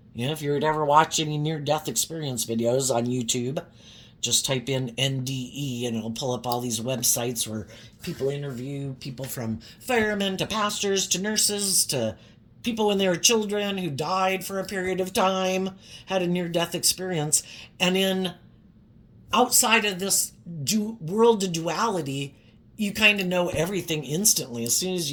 If you're ever watching any near-death experience videos on YouTube, just type in NDE and it'll pull up all these websites where people interview people from firemen to pastors to nurses to people when they were children who died for a period of time, had a near-death experience. And outside of this world of duality, you kind of know everything instantly. As soon as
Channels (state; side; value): identical; both; correlation 1.00